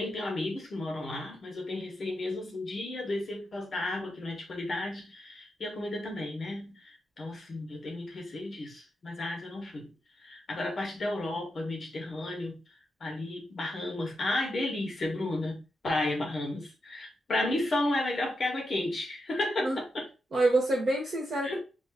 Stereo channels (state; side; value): normal; both; correlation 0.86